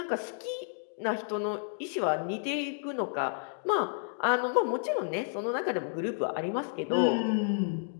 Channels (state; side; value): silent; right; digital silence